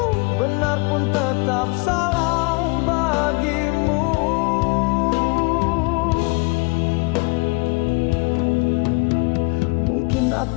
benar pun tetap salah bagimu. Mungkin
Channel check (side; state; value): right; quieter; 28.5 dB